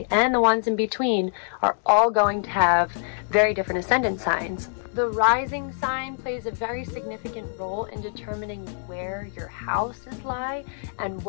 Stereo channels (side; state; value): right; silent; 62 dB below the other